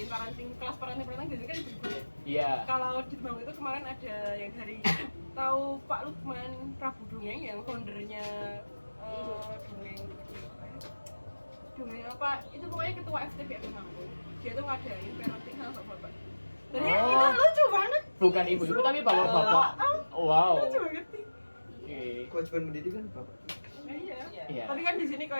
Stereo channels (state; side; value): inverted; both; correlation -1.00